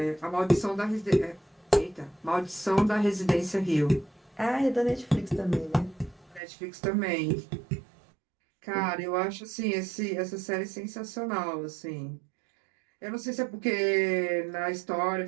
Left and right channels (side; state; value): left; drops out; at 6.4 s